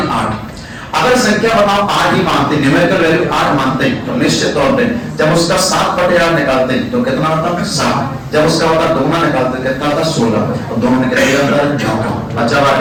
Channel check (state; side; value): identical; both; correlation 1.00